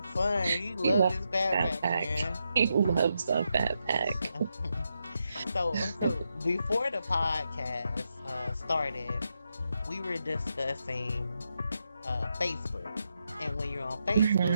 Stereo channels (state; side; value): inverted; both; correlation -0.84